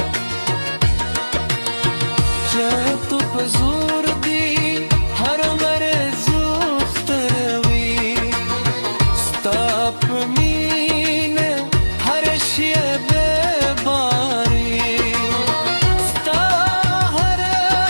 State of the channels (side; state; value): both; inverted; correlation -1.00